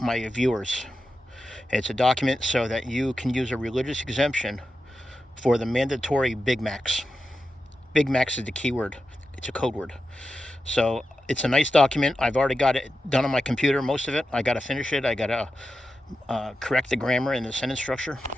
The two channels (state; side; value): normal; both; correlation 0.90